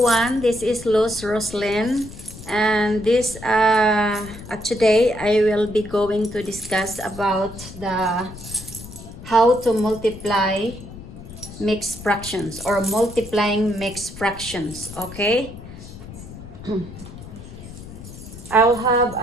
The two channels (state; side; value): noise; left; rumble, 14 dB below the sound